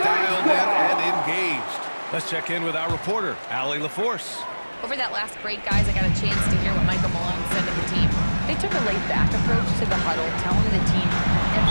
dialed in and engaged. Let's check in with our reporter, Allie LaForce. Over that last break, guys, I got a chance to hear what Michael Malone said to the team. They took a laid-back approach to the huddle, telling the team,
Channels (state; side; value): inverted; both; correlation -1.00